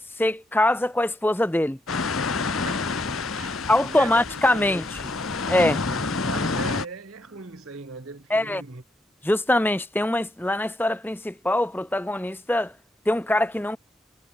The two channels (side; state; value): both; normal; correlation 0.79